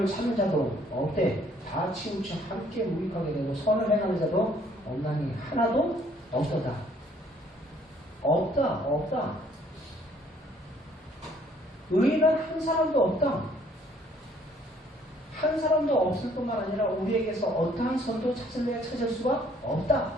찾는 자도 없대. 다 치우쳐 함께 무익하게 되고 선을 행하는 자도 없나니 하나도 없도다. 없다. 의인은 한 사람도 없다. 한 사람도 없을 뿐만 아니라 우리에게서 어떠한 선도 찾을 수가 없다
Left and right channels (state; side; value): normal; both; correlation 0.62